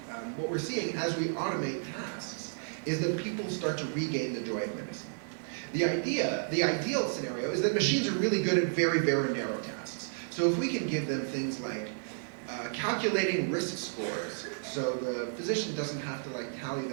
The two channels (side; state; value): left; silent; digital silence